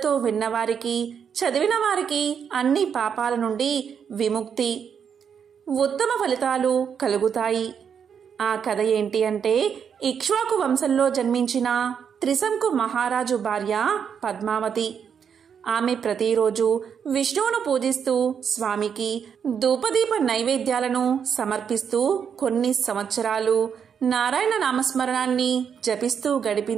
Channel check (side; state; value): left; quieter; 7.4 dB